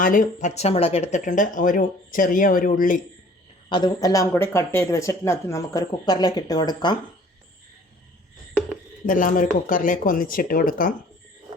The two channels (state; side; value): normal; both; correlation 0.53